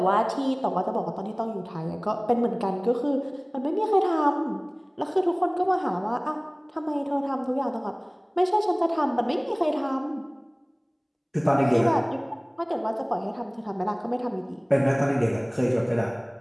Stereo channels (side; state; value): both; identical; correlation 1.00